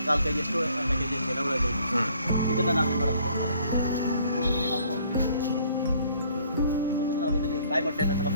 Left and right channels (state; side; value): inverted; both; correlation -0.61